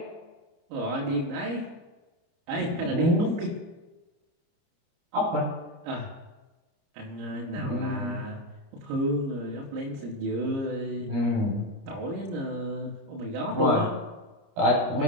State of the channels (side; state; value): left; late; 29 ms